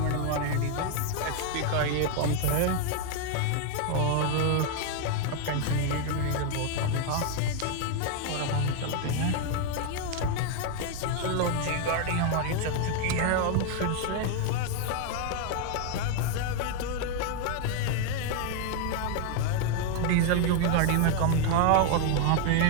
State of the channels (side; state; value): both; different; correlation 0.01